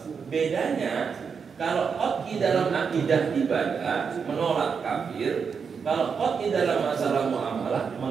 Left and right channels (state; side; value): quieter; left; 6.0 dB